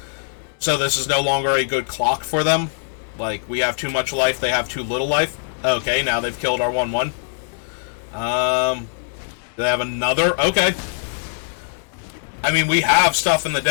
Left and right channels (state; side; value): silent; right; digital silence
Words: So this is no longer a good clock for them. Like, we have too much life, they have too little life. Okay, now they've killed our 1/1. They have another? Okay. I mean, we have stuff in the